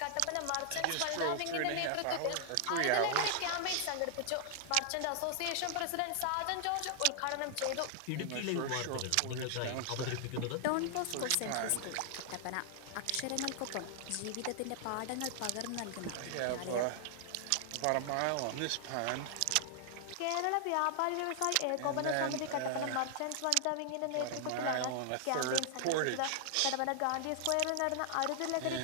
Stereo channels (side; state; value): both; different; correlation -0.01